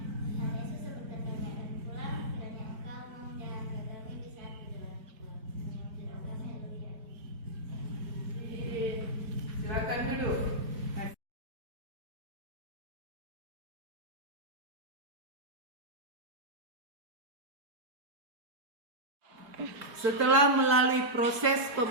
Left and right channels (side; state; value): left; late; 4.7 ms